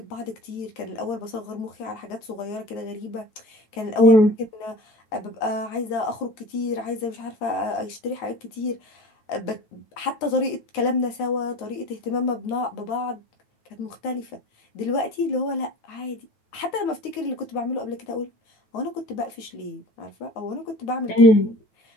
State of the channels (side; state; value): right; late; 9.6 ms